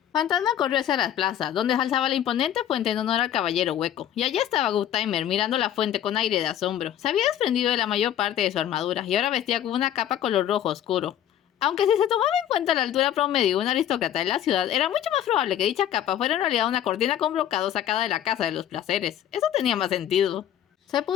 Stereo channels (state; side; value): quieter; right; 10.8 dB